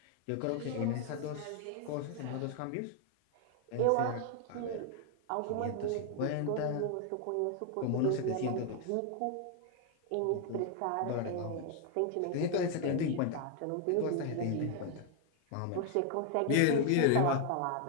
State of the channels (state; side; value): different; both; correlation 0.00